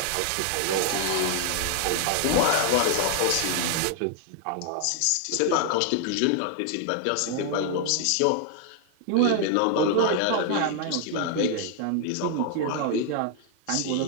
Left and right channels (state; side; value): different; both; correlation 0.00